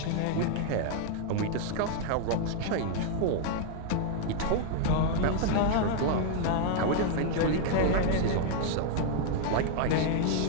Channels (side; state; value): both; different; correlation 0.00